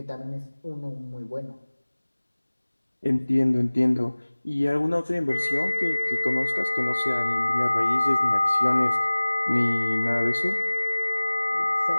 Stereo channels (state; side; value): inverted; both; correlation -1.00